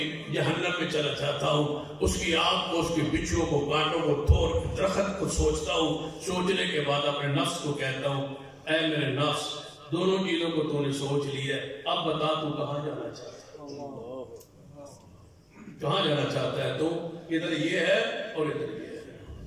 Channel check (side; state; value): both; identical; correlation 1.00